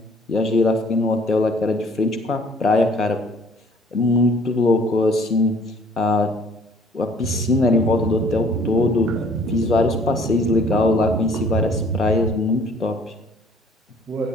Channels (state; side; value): normal; both; correlation 0.57